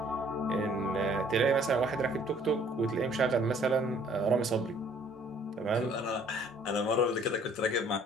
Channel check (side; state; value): both; normal; correlation 0.58